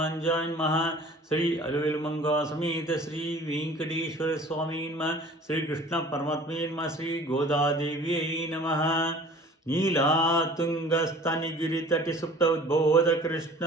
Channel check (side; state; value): both; normal; correlation 0.47